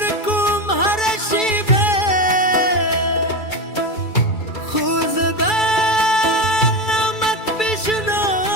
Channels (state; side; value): late; right; 2.3 ms